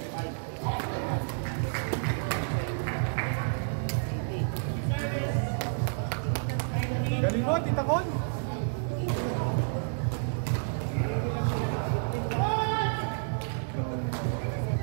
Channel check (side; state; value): left; silent; digital silence